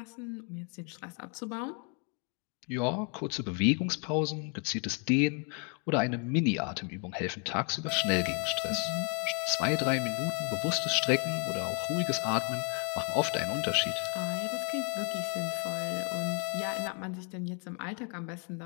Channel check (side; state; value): right; quieter; 37.8 dB